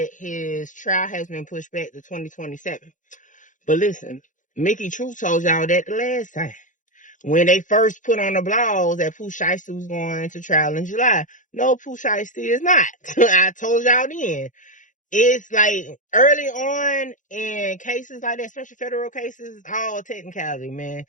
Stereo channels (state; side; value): late; right; 0.37 ms